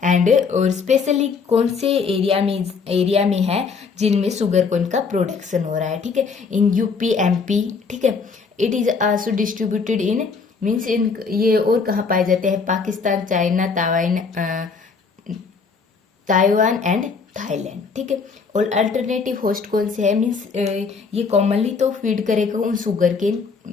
एंड और स्पेशली कौन से एरिया में है जिनमें शुगर कोन का प्रोडक्शन हो रहा है, ठीक है, इन यूपी MP, ठीक है, it is also distributed in means in ये और कहाँ पाए जाते हैं, Pakistan, China, Taiwan and Thailand, ठीक है, और अल्टरनेटिव होस्ट कौन से है, मीन्स ये कॉमनली तो फीड करेगा उन sugar cane,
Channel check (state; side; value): quieter; right; 5.1 dB